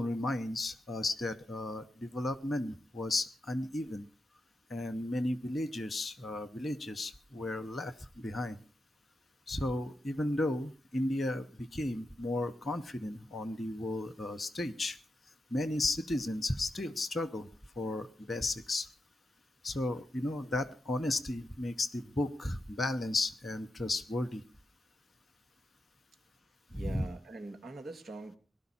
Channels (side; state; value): both; normal; correlation 0.87